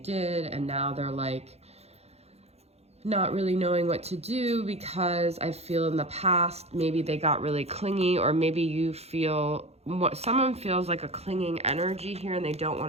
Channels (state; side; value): late; left; 0.30 ms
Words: and now they're like not really knowing what to do, because I feel in the past, maybe they got really clingy, or maybe you feel what someone feels like a clinging energy here, and they don't